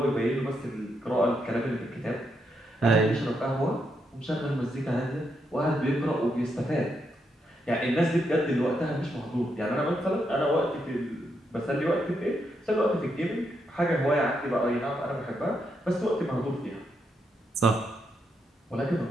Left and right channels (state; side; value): normal; both; correlation 0.80